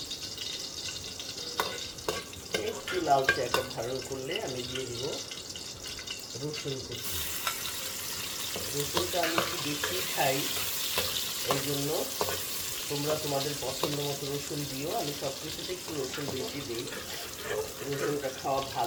একটু লালচে একটা ভালো করলে আমি দিয়ে দিব রসুন কুচি। রসুনটা আমি একটু বেশি খাই, এই জন্য তোমরা তোমাদের পছন্দ মতো রসুন দিও। আমি সব কিছুতে একটু রসুন বেশি দিই, রসুনটা খাওয়া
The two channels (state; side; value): identical; both; correlation 1.00